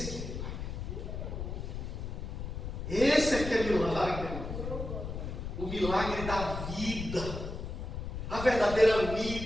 milagre. O milagre da vida. A verdadeira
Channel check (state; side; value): noise; left; rumble, 6 dB below the sound